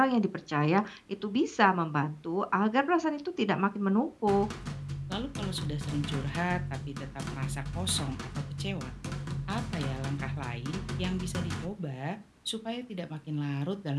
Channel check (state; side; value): identical; both; correlation 1.00